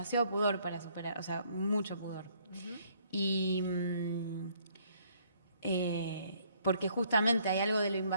pudor para superar, o sea, mucho pudor. Y porque justamente hay algo de lo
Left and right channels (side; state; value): both; inverted; correlation -0.65